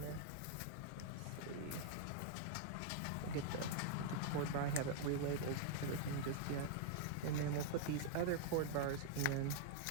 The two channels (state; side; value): different; both; correlation -0.01